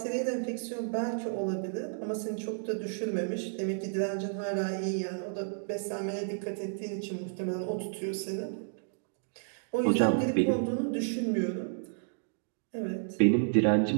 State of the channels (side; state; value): left; silent; digital silence